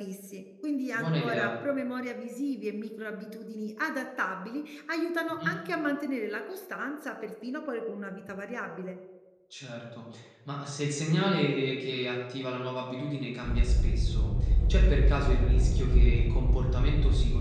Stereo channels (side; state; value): both; identical; correlation 1.00